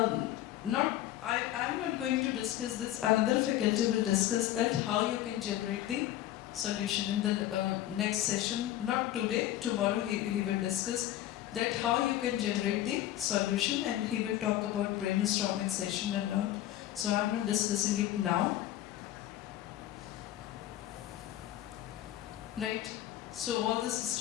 not going to discuss this. Another faculty will discuss that how you can generate the solution in the next session. Not today, tomorrow he will discuss that how you can generate the solution, and he will talk about brainstorming session and all. So I'm not discussing it now. Right? So all these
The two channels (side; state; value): right; quieter; 13.5 dB